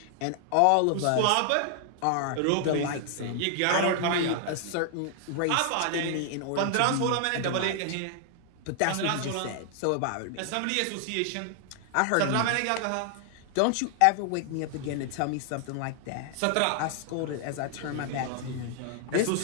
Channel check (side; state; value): both; different; correlation 0.00